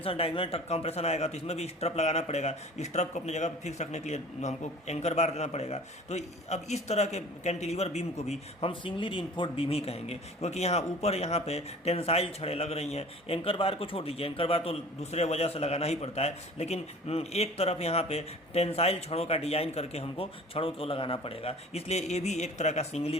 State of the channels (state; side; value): normal; both; correlation 0.44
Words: डायगोनल कंप्रेशन आएगा, तो इसमें भी स्ट्रप लगाना पड़ेगा। स्ट्रप को अपनी जगह पर फिक्स रखने के लिए हमको एंकर बार देना पड़ेगा। तो अब इस तरह के कैंटिलीवर बीम को भी हम सिंगली रीइंफोर्स्ड बीम ही कहेंगे, क्योंकि यहाँ ऊपर यहाँ पे टेंसाइल छड़ें लग रही हैं। एंकर बार को छोड़ दीजिए, एंकर बार तो दूसरे वजह से लगाना ही पड़ता है, लेकिन एक तरफ यहाँ पे टेंसाइल छड़ों का डिज़ाइन करके हमको छड़ों को लगाना पड़ेगा। इसलिए ये भी एक तरह का सिंगली